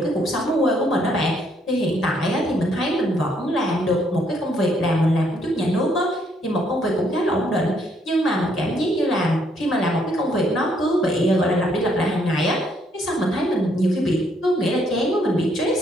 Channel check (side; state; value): both; normal; correlation 0.70